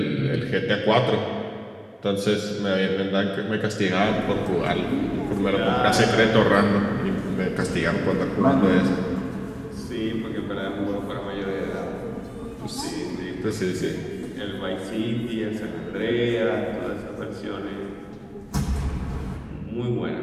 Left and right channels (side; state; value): both; identical; correlation 1.00